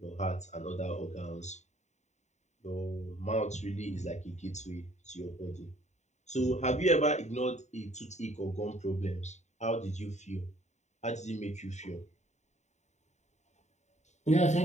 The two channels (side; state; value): right; late; 0.34 ms